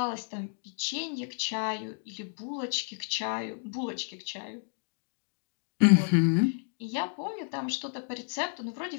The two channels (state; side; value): silent; right; 57 dB below the other